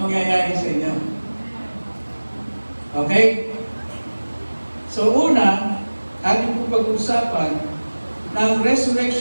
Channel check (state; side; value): inverted; both; correlation -1.00